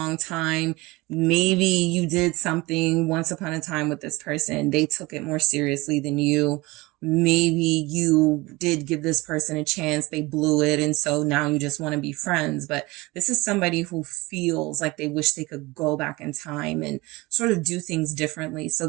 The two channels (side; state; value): left; quieter; 22.3 dB